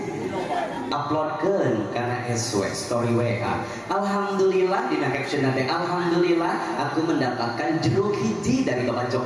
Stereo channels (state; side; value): identical; both; correlation 1.00